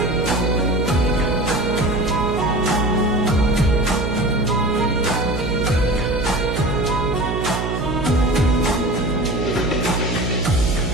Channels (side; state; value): right; noise; hum, 3 dB below the sound